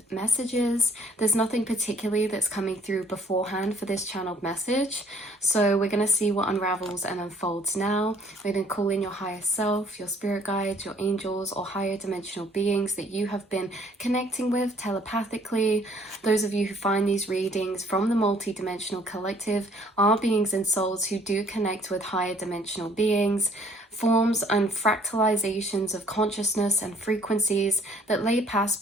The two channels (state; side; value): normal; both; correlation 0.60